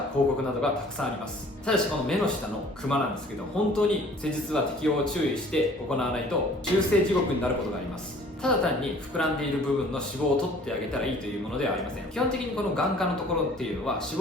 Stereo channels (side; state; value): both; normal; correlation 0.52